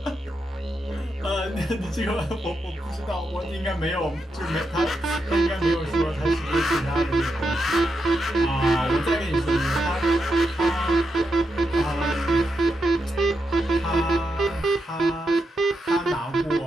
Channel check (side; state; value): both; normal; correlation 0.85